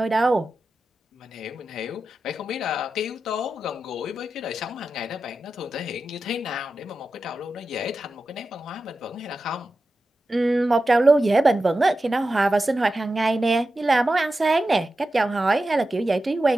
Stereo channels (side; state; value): both; normal; correlation 0.92